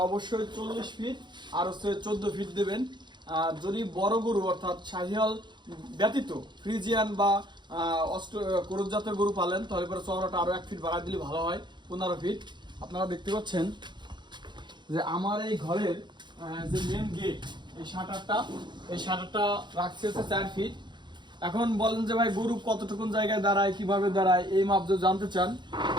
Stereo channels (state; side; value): late; left; 0.22 ms